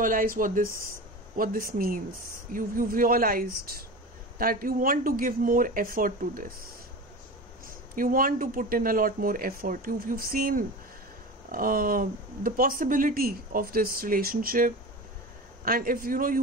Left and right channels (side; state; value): both; normal; correlation 0.30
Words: this means. You've realized that you want to give more effort to this. You want to put in a lot more effort. You've seen the possibility of this relationship, and if